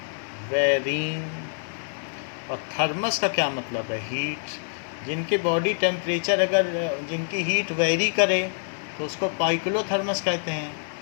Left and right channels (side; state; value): right; silent; digital silence